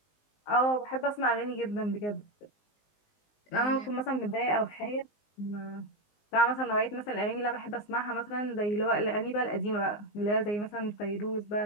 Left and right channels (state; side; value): late; right; 19 ms